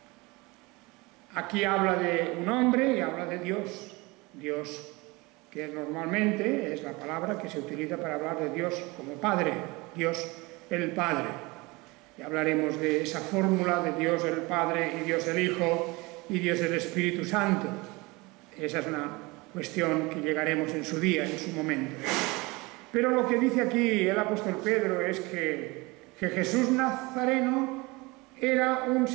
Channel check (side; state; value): left; quieter; 24.2 dB